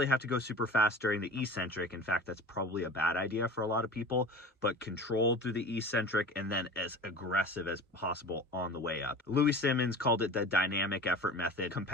have to go super fast during the eccentric. In fact, that's probably a bad idea for a lot of people, but controlled through the eccentric and then as aggressive as possible on the way up. Louis Simmons called it the dynamic effort method.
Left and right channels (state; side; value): normal; both; correlation 0.37